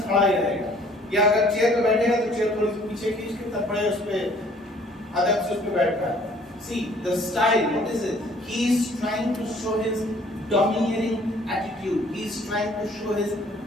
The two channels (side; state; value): both; normal; correlation 0.57